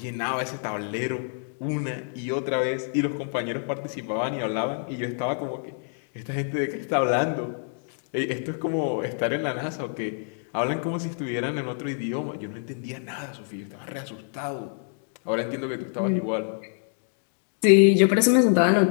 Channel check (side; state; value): right; silent; 60 dB below the other